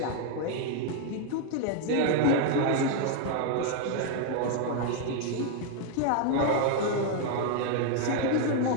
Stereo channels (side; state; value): both; different; correlation 0.00